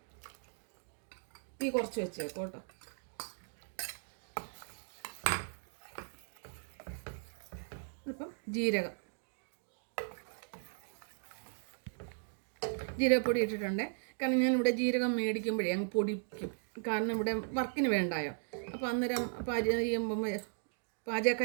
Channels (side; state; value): left; silent; digital silence